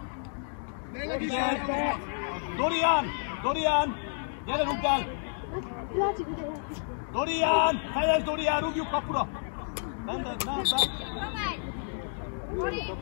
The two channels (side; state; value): right; silent; digital silence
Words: Dorian! Gyere, rúgd el! Dorian! Fejezd, Dorian, rúgjuk kapura!